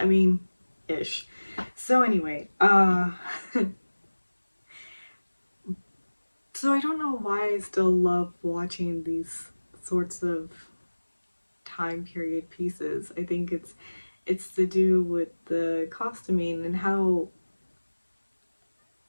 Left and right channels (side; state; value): both; inverted; correlation -1.00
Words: mean, ish. So anyway, so I don't know why I still love watching these sorts of time period pieces. I think it's to do with the costuming and how,